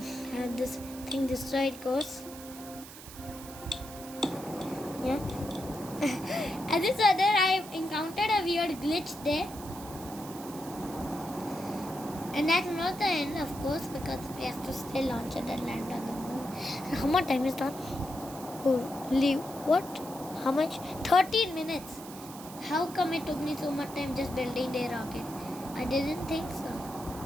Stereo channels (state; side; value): noise; right; hiss, 15 dB below the sound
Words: have this thing destroyed, cause yeah. As this other, I encountered a weird glitch there. And that's not the end, of course, because we have to still launch it and land on the moon. And how much time is done? Holy, what? How much? 13 minutes. How come it took me so much time just building the rocket? I didn't think so.